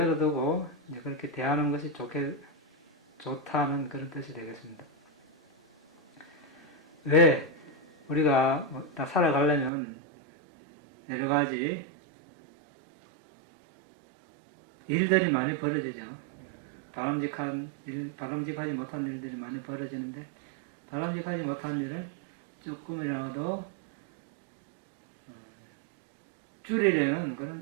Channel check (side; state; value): left; drops out; at 9.7 s